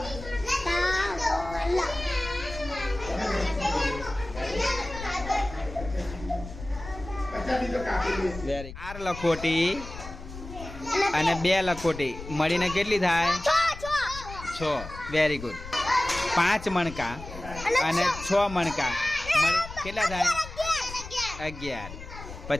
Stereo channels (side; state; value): left; noise; rumble, 12 dB below the sound